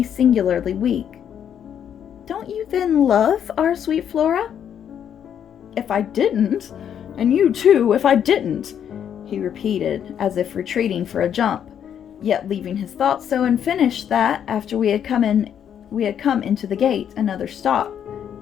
singularly weak. "Don't you then love our sweet Flora?" "If I didn't, and you too, if I didn't," he repeated, as if retreating for a jump, yet leaving his thoughts so unfinished that, after we had come into the gate, another stop,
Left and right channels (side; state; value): right; quieter; 8.9 dB